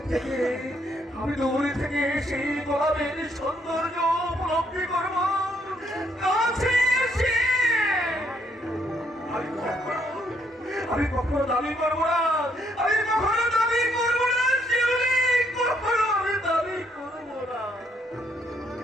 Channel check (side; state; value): both; normal; correlation 0.71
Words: দূরে থেকে সেই গোলাপের সৌন্দর্য উপলব্ধি করবো কাছে এসে। আমি কখনো দাবি করবো না, আমি কখনো দাবি করবো না শিউলি, কখনো আমি দাবি করবো না।